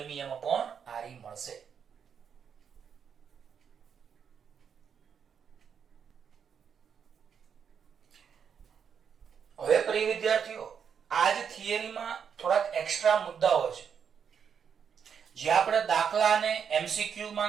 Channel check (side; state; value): left; quieter; 7.2 dB